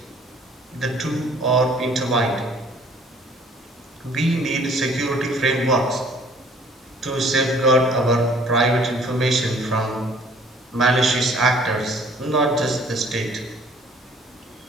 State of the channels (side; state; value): both; normal; correlation 0.56